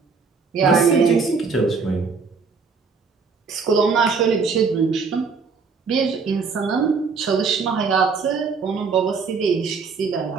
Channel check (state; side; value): quieter; left; 5.0 dB